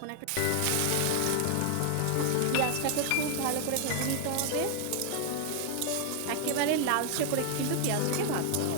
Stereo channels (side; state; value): both; different; correlation 0.00